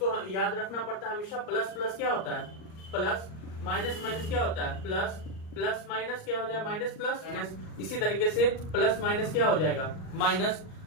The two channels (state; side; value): late; right; 38 ms